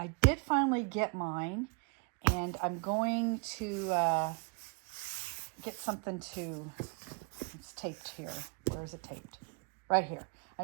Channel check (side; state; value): left; quieter; 34.6 dB